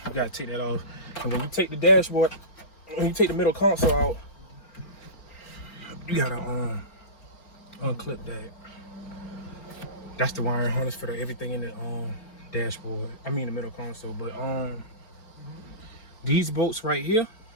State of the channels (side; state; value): right; late; 4.4 ms